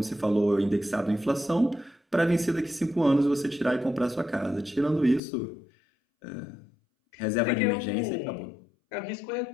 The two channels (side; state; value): right; drops out; at 5.2 s